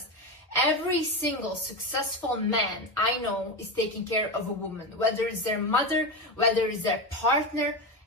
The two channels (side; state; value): both; normal; correlation 0.17